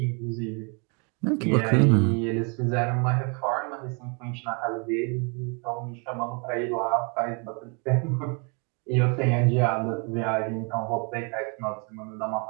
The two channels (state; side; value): quieter; left; 34.9 dB